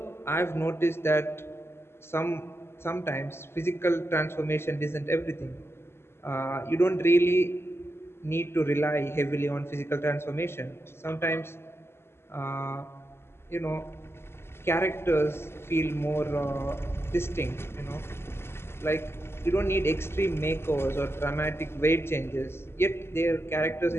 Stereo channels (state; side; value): late; right; 0.12 ms